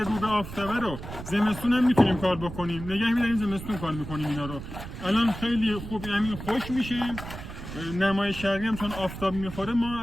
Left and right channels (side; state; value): right; noise; rumble, 10 dB below the sound